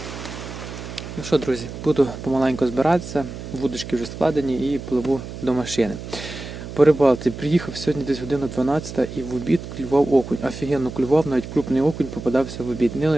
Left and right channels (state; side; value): noise; right; hum, 10 dB below the sound